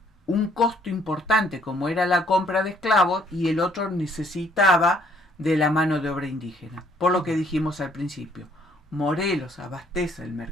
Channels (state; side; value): normal; both; correlation 0.65